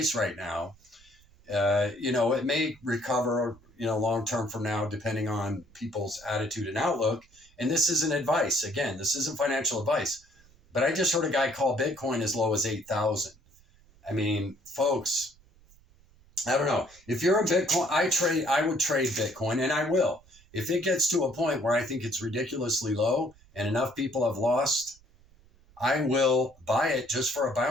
right now, it may recover, long-term from now, depending on people's attitude and outlook. And this isn't advice. Again, this isn't financial advice. But I just heard a guy call Bitcoin as low as 8,000. I mean, folks, I don't know. If you're a Bitcoin, I would trade Bitcoin, and I will. If it gets to a point where I think it's ridiculously low and enough people have lost, I will buy it just for a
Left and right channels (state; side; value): noise; right; rumble, 28 dB below the sound